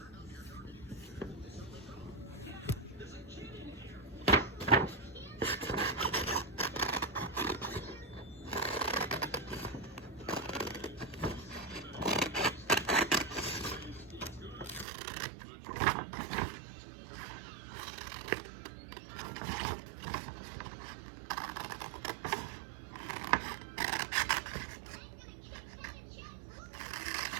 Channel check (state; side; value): drops out; left; at 14.9 s